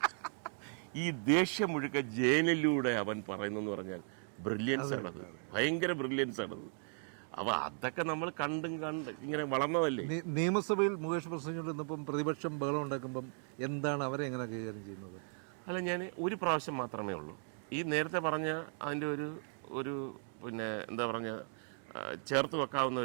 ഈ ദേഷ്യം മുഴുക്ക ജയനിലൂടെ അവൻ പറയുന്നെന്ന് പറഞ്ഞാൽ ബ്രില്യൻസ് ആണത്, ഭയങ്കര ബ്രില്യൻസ് ആണത്. അപ്പോൾ അതൊക്കെ നമ്മൾ കണ്ട് ഇങ്ങനെ വളർന്നതല്ലേ. നിയമസഭയിൽ മുകേഷ് പ്രസംഗിച്ചിരുന്നപ്പം പ്രതിപക്ഷം ബഹളം ഉണ്ടാക്കുമ്പം എന്താണ് അവരെ എങ്ങനെ കൈകാര്യം ചെയ്യുന്നത്? അല്ല, ഞാൻ ഒരു പ്രാവശ്യം മാത്രമേ ഉള്ളൂ ഈ നേരത്തെ പറഞ്ഞ അതിൻ്റെ ഒരു പിന്നെ എന്താ പറഞ്ഞ ചേർത്ത് വെക്കാവുന്ന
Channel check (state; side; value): silent; left; 53 dB below the other